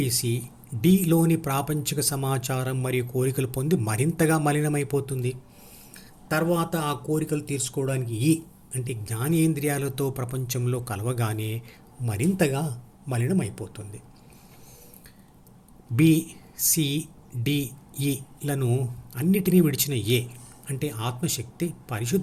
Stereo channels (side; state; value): both; identical; correlation 1.00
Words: డిలోని ప్రాపంచిక సమాచారం మరియు కోరికలు పొంది మరింతగా మలినమైపోతుంది. తర్వాత ఆ కోరికలు తీర్చుకోవడానికి ఈ అంటే జ్ఞానేంద్రియాలతో ప్రపంచంలో కలవగానే మరింతగా మలినమైపోతుంది. బి సి డి ఈలను అన్నిటినీ విడిచిన ఏ అంటే ఆత్మశక్తి